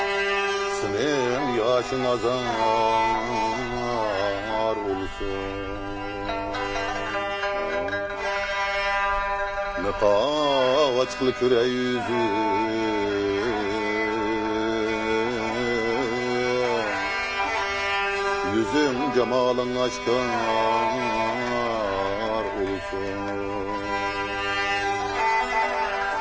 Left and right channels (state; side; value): identical; both; correlation 1.00